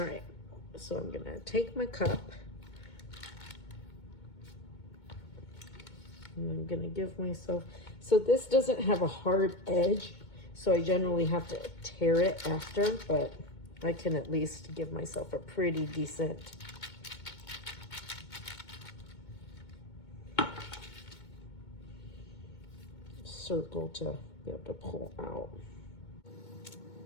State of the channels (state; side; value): late; right; 2.2 ms